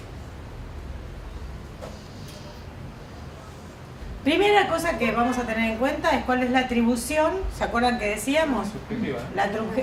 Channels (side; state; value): both; identical; correlation 1.00